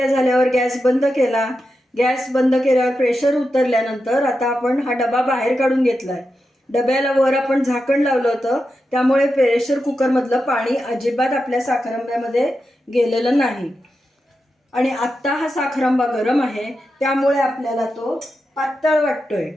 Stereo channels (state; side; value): normal; both; correlation 0.89